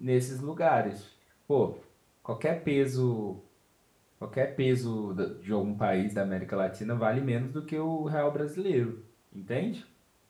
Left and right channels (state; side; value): identical; both; correlation 1.00